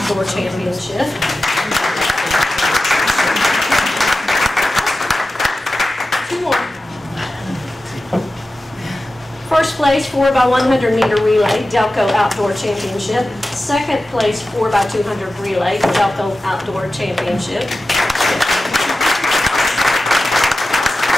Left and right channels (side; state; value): both; normal; correlation 0.94